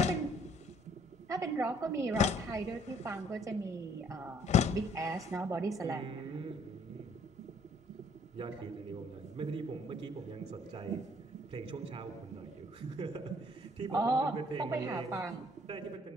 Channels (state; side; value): normal; both; correlation 0.61